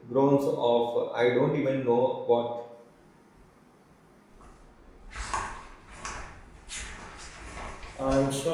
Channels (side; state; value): both; identical; correlation 1.00